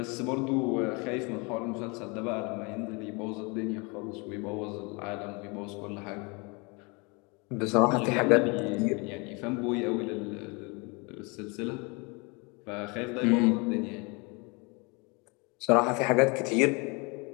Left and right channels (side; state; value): right; quieter; 29.6 dB